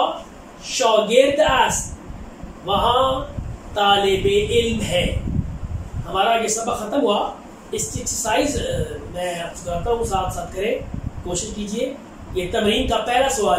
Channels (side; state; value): both; identical; correlation 1.00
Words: شاگرد است، وہاں طالب علم ہے. ہمارا یہ سبق ختم ہوا. اس کی ایکسرسائز میں آپ کو کراتا ہوں، ساتھ ساتھ کریں، کوشش کیجئے. یہ تمرین کا پہلا